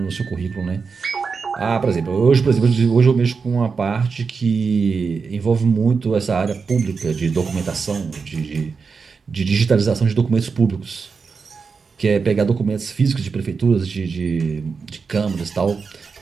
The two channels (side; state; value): left; quieter; 5.2 dB